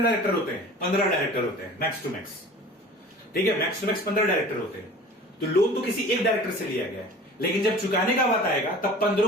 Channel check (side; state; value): both; normal; correlation 0.42